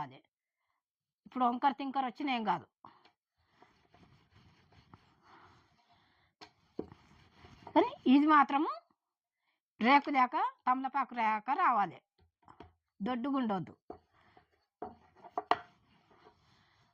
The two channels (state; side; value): identical; both; correlation 1.00